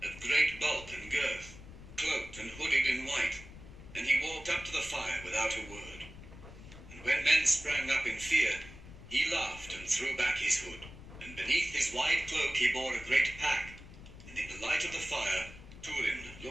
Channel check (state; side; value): noise; left; rumble, 16 dB below the sound